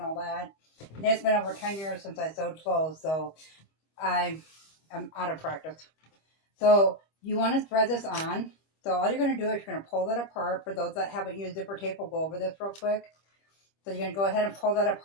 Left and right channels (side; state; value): right; late; 25 ms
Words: that. And it's been over 10 years since I sewed clothes, so I am out of practice. So you want to thread this on. So all you're going to do is you're going to pull that apart. For those that haven't used zipper tape, we'll go over this real quick. So you're going to go ahead and pull that